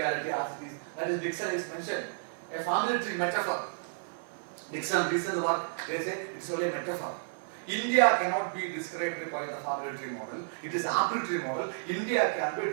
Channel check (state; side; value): silent; left; digital silence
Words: as it is. That is, Dixon is mentioned. A family tree metaphor. Dixon recent work, they say it is only a metaphor. India cannot be described by the family tree model. It is apple tree model. India can be